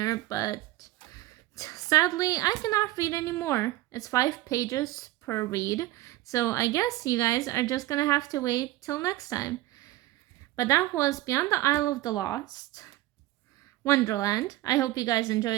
but sadly, I cannot read anymore. It's 5 pages per read. So I guess you guys are just going to have to wait till next time. But that was Beyond the Isle of the Lost, Wonderland. I hope you guys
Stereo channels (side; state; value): left; quieter; 16.7 dB